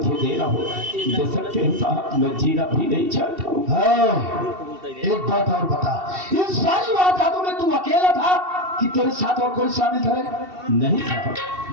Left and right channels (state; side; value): late; left; 2.7 ms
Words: देना हो दे सकते हैं साहब, मैं जीना भी नहीं चाहता हूँ। एक बात और बता, इन सारी वारदातों में तू अकेला था कि तेरे साथ और कोई शामिल था? नहीं साहब,